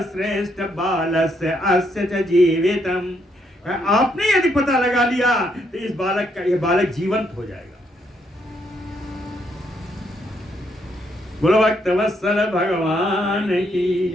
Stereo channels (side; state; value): both; normal; correlation 0.74